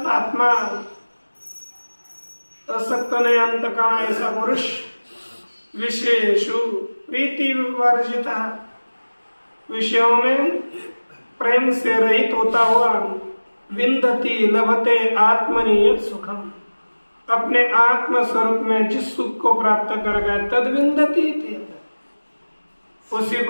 आत्मा, असक्त नहीं अंतःकरण ऐसा पुरुष विषयेषु प्रीति वर्जित, विषयों में प्रेम से रहित होता हुआ विन्दति लभते आत्मनि यत् सुखम, अपने आत्म स्वरूप में जिस सुख को प्राप्त कर गए तद विन्दति, उसी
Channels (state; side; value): inverted; both; correlation -1.00